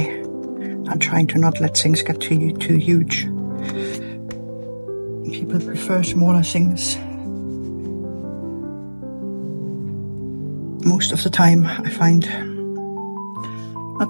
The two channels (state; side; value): inverted; both; correlation -1.00